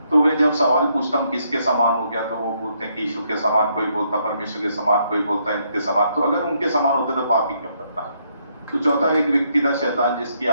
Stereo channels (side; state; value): both; inverted; correlation -0.74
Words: तो वे जब सवाल पूछता हूँ किसके समान हो गया, तो वो बोलते हैं कि यीशु के समान, कोई बोलता परमेश्वर के समान, कोई बोलता है इनके समान। तो अगर उनके समान होते तो पाप ही क्यों करता? तो चौथा एक व्यक्ति था शैतान, जिसकी